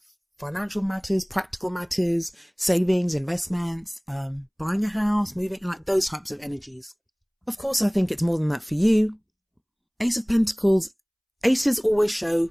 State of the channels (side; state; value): both; identical; correlation 1.00